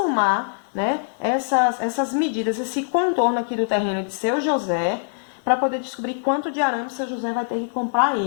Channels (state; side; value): silent; right; digital silence